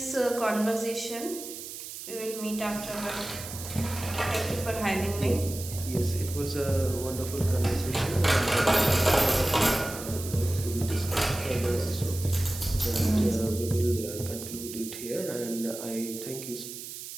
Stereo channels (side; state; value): right; noise; hiss, 10 dB below the sound